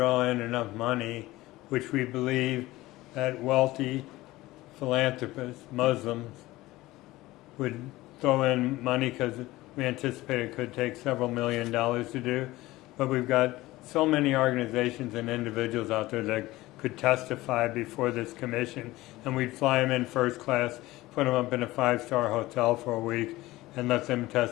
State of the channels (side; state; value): right; quieter; 18.4 dB